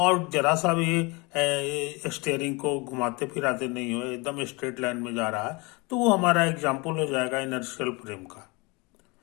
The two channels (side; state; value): right; quieter; 27.3 dB